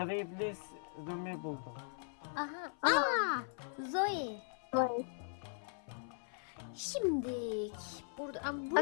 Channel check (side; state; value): right; silent; 52 dB below the other